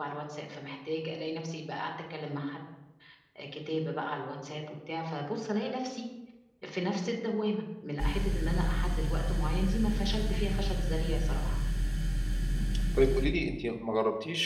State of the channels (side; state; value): both; identical; correlation 1.00